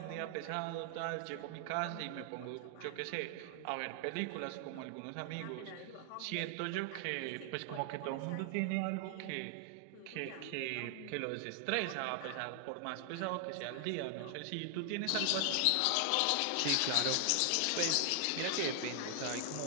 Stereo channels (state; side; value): different; both; correlation 0.00